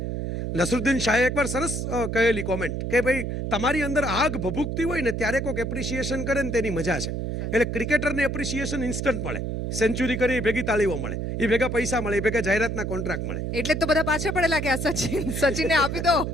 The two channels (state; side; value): noise; right; hum, 3 dB below the sound